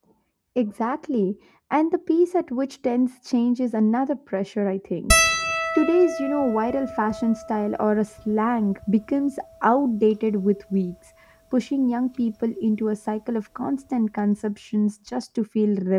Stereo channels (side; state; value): both; identical; correlation 1.00